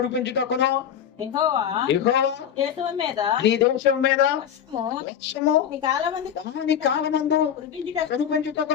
యెహోవా యెహోవా దేశం మీద నీ దేశం మీద వర్షము వర్షము నీ కాలమందు దాని కాలమందు కురిపించుటకు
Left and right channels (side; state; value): right; quieter; 9.1 dB